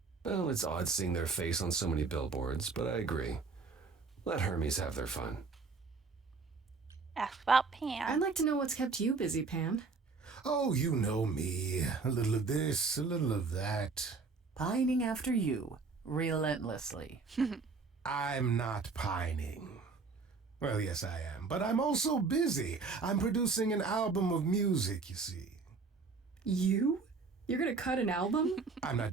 Well, it's odd seeing their face on so many billboards, but I agree. Let Hermes have their fun. Ask about Pan. I'd like to know what's kept you busy, Pan. Oh, you know me. A little of this, a little of that. Pining after you, relentlessly. I'm not pining. Well, yes, I am, but I'm also busy. I'm producing an album of music, you see. You? You're gonna cut an album? I'm not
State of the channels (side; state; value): left; quieter; 4.5 dB